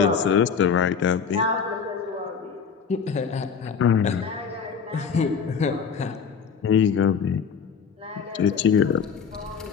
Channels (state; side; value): quieter; right; 6.4 dB